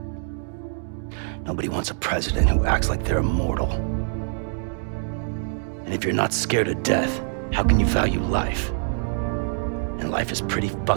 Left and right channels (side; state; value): left; silent; 59 dB below the other